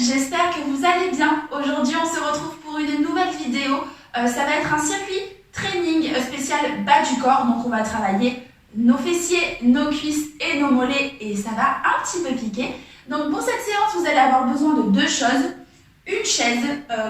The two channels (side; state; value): both; identical; correlation 1.00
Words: j'espère que vous allez bien. Aujourd'hui on se retrouve pour une nouvelle vidéo. Ça va être un circuit training spécial bas du corps. Donc on va travailler nos fessiers, nos cuisses et nos mollets et ça va un petit peu piquer. Donc pour cette séance vous allez avoir besoin de deux choses. Une chaise,